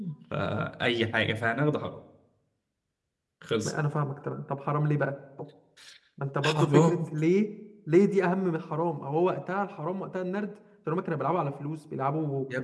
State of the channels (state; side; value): identical; both; correlation 1.00